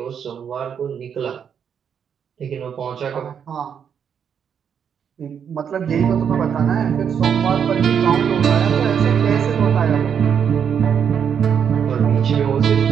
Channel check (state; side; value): quieter; left; 7.7 dB